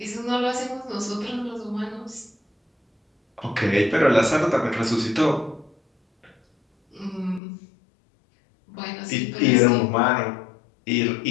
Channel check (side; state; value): right; drops out; at 7.4 s